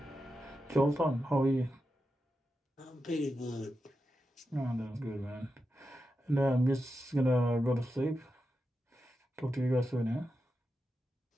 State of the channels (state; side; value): normal; both; correlation 0.89